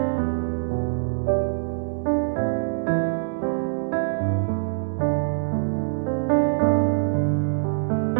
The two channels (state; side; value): silent; left; digital silence